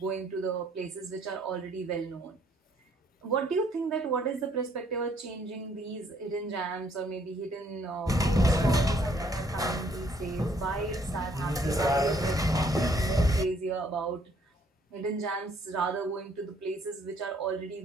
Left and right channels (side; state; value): both; normal; correlation 0.65